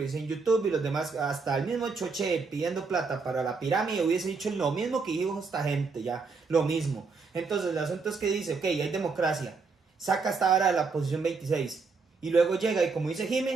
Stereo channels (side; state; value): left; quieter; 4.6 dB